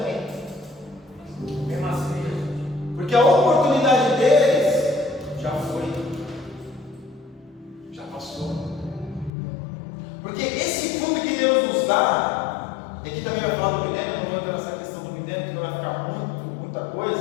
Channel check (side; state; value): right; drops out; at 9.3 s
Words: Mesmo assim. porque a oportunidade deles já foi, já passou. Porque esse fruto que Deus nos dá, e aqui também vai falar do milênio, não vou entrar nessa questão do milênio, que vai ficar muita